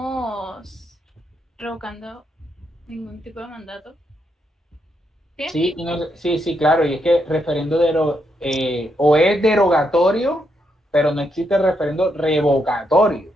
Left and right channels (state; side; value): normal; both; correlation 0.80